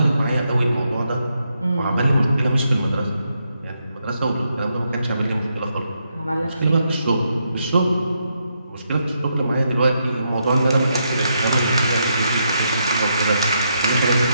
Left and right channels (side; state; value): both; inverted; correlation -0.80